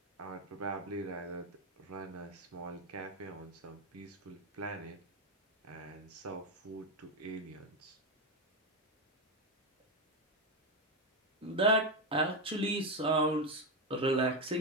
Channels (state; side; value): normal; both; correlation 0.09